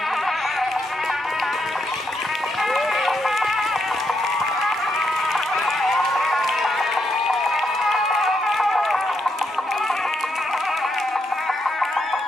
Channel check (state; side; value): normal; both; correlation 0.79